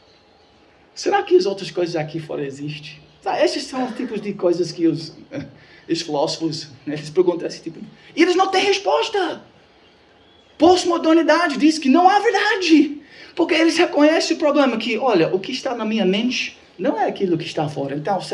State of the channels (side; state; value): both; identical; correlation 1.00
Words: Será que as outras coisas aqui fora existem? Esses são os tipos de coisas que os filósofos, eles perguntam esse tipo. E eles não têm resposta. Pós-modernidade diz que não há verdade. Porque eles reconhecem o problema que, olha, o que está na minha mente não é aquilo que está fora. Então,